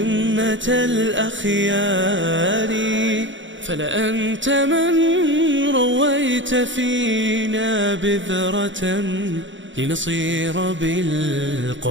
الأخيار. فلأنت من رويت فينا بذرة، لنصير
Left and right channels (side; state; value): left; late; 0.55 ms